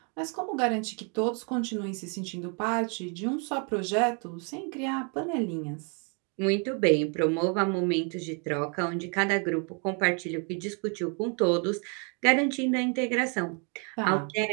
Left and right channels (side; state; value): left; quieter; 37.0 dB